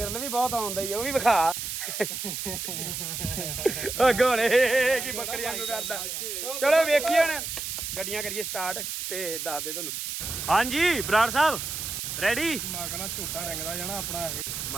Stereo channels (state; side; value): noise; right; hiss, 5 dB below the sound